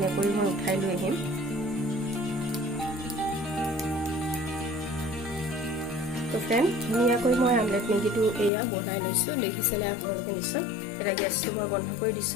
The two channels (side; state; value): right; drops out; at 8.5 s